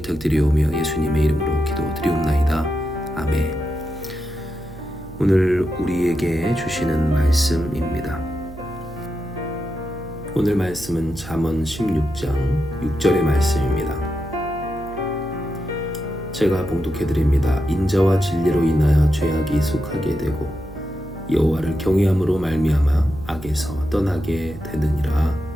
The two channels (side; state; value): right; noise; hum, 16 dB below the sound